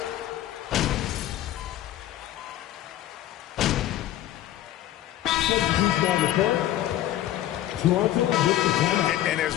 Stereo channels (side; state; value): right; quieter; 13.3 dB